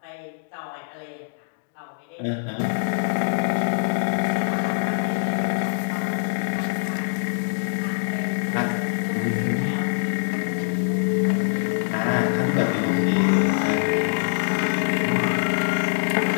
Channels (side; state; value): right; silent; digital silence